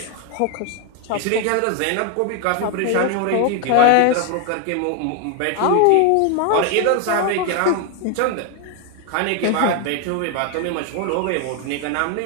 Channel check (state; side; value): different; both; correlation 0.01